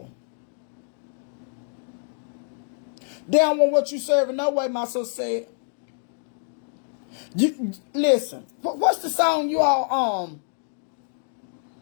They don't want what you serving no way, my sister said. Listen, what's the song you all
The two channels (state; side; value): silent; right; digital silence